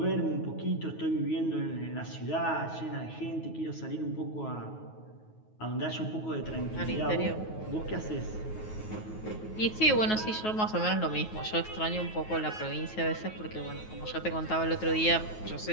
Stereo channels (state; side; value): late; right; 9.4 ms